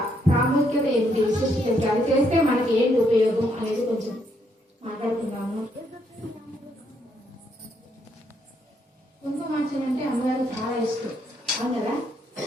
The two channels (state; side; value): normal; both; correlation 0.74